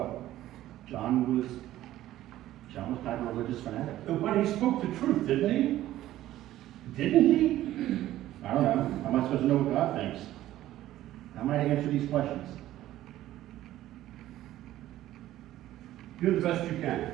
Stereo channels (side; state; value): left; quieter; 14.2 dB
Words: John was kind of a religious fanatic. But he spoke the truth, didn't he? Didn't he? I don't know. How am I supposed to know what God thinks? How am I to answer these questions? Do the best you can.